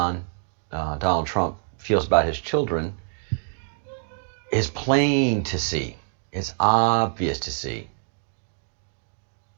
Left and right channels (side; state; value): left; silent; digital silence